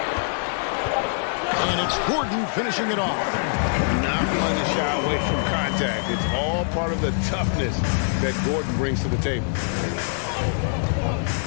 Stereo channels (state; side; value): silent; right; 63 dB below the other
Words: And it's Gordon finishing it off. Not one to shy away from contact. It's all part of the toughness that Gordon brings to the table.